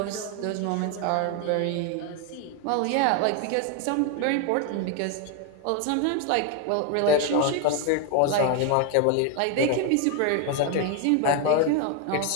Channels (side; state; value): both; different; correlation 0.01